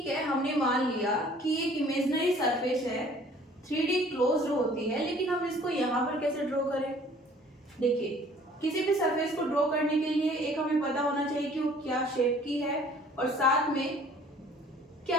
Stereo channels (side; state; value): both; normal; correlation 0.53